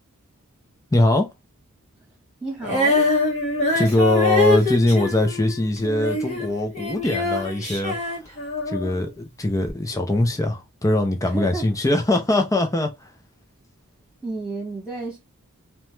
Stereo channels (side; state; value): both; normal; correlation 0.56